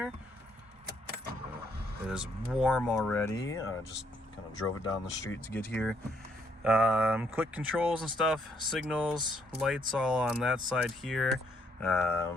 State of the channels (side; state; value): both; normal; correlation 0.71